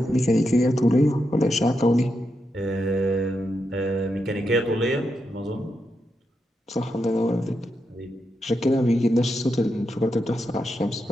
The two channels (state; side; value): normal; both; correlation 0.85